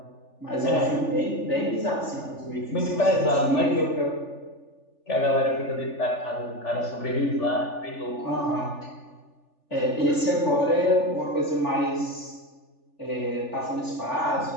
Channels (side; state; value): right; late; 3.4 ms